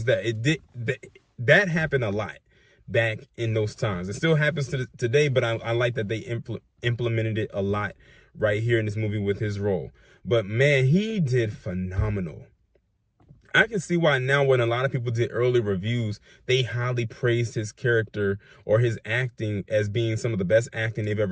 that, that happened a lot back in those times. It still happens today, but I like that they implemented it a lot right here in this movie with his role. But man, he did phenomenal. I can see why now, when a lot of people did early reviews, they highly praised his character or his acting as being some of the best acting they've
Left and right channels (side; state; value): both; identical; correlation 1.00